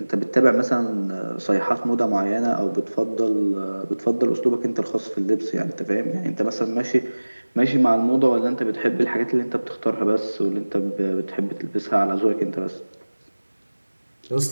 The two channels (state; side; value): inverted; both; correlation -1.00